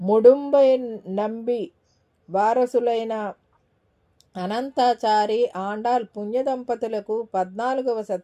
నంబి వారసులైన అనంతాచారి ఆండాల్ పుణ్యదంపతులకు 14వ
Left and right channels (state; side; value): identical; both; correlation 1.00